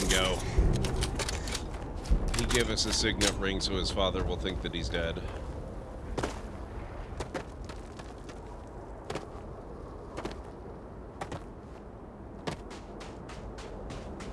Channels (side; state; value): both; identical; correlation 1.00